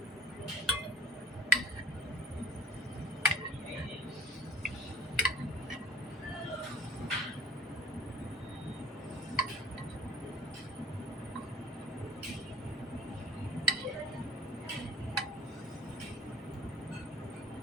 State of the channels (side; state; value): both; normal; correlation 0.51